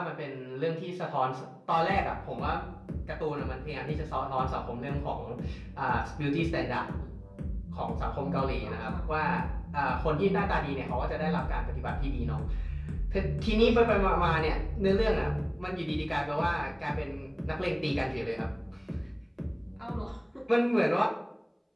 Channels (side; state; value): both; identical; correlation 1.00